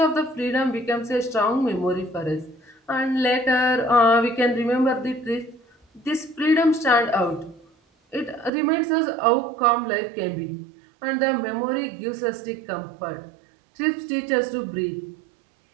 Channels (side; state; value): left; drops out; at 8.5 s